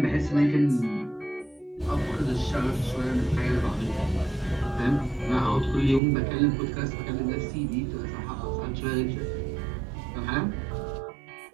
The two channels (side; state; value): left; drops out; at 6.0 s